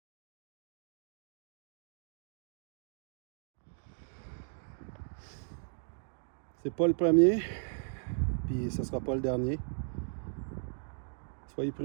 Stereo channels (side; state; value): left; silent; digital silence